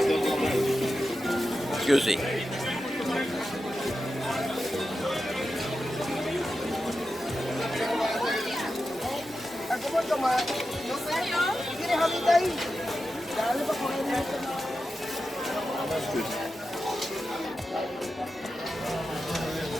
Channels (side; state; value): both; normal; correlation 0.91